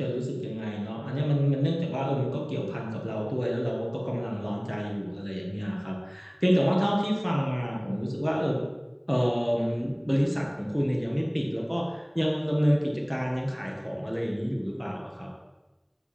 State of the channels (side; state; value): both; identical; correlation 1.00